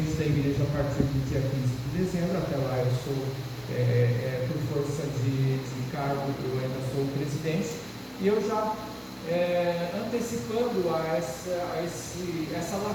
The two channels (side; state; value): both; identical; correlation 1.00